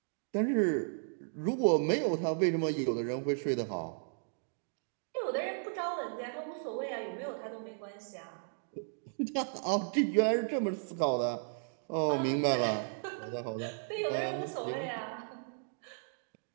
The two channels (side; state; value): left; silent; digital silence